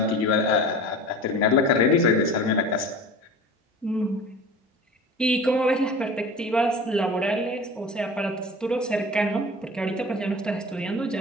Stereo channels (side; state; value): both; normal; correlation 0.37